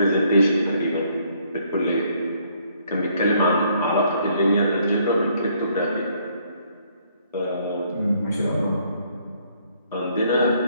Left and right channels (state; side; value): inverted; both; correlation -0.67